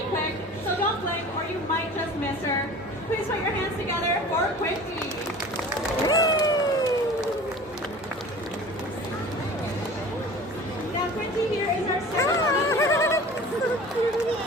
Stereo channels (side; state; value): both; normal; correlation 0.41